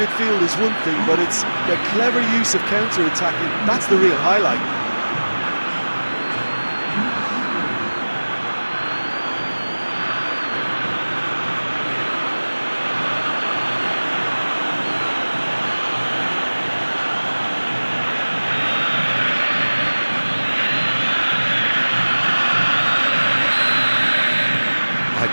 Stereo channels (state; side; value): inverted; both; correlation -1.00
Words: is one thing, but it's their clever use of counter-attacking. That's the real highlight.